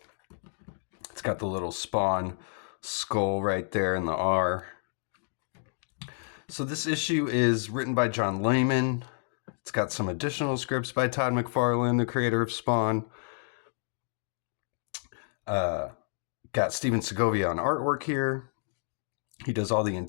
It's got the little Spawn skull right there in the R. So this issue is written by John Layman. It's got some additional scripts by Todd McFarlane, the creator of Spawn. Got Steven Segovia on artwork here. He does all the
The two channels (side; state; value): right; silent; 58 dB below the other